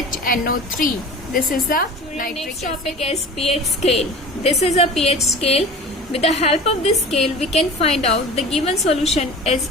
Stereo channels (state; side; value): normal; both; correlation 0.38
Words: This is the nitric acid. Next topic is pH scale. This is a pH scale. With the help of this scale, we can find out the given solution is